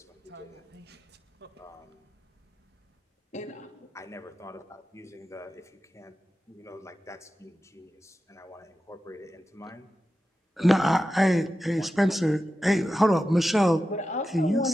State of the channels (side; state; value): both; normal; correlation 0.92